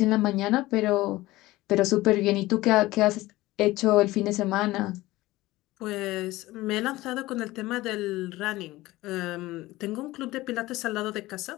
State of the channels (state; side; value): quieter; right; 18.3 dB